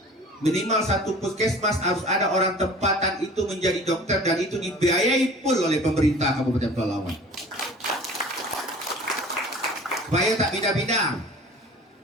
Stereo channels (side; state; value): both; normal; correlation 0.44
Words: Minimal satu puskesmas harus ada orang tempatan itu menjadi dokter, dan itu dibiayai full oleh pemerintah Kabupaten Pelalawan. Supaya tak pindah-pindah,